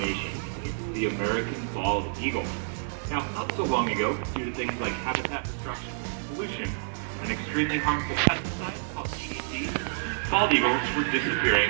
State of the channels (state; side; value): silent; left; 55 dB below the other